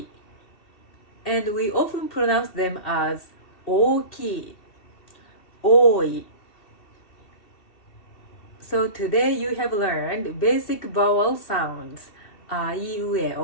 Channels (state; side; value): late; right; 2.7 ms